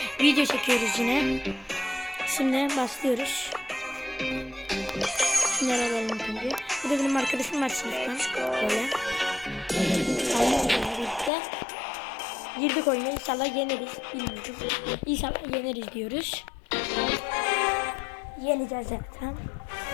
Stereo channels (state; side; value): drops out; right; at 11.3 s